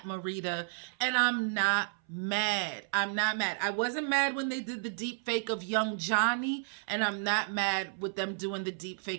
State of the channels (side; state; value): left; silent; 56 dB below the other